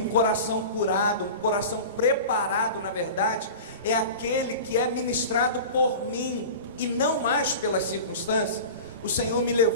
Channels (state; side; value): inverted; both; correlation -0.34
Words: coração curado, um coração preparado, na verdade, é aquele que é ministrado por mim e não mais pelas circunstâncias. O Senhor me